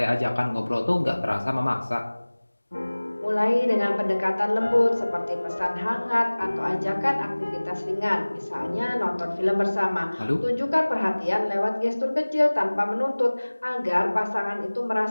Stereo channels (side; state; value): both; inverted; correlation -1.00